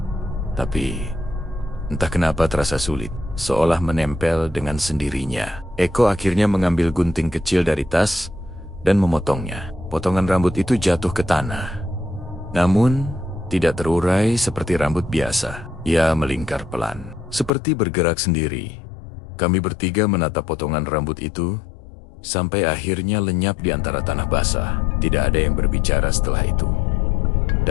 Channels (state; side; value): drops out; right; at 17.5 s